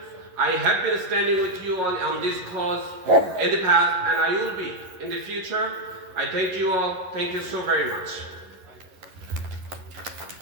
I have been standing with you on this cause in the past, and I will be in the future. I thank you all. Thank you so very much.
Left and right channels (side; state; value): left; late; 11 ms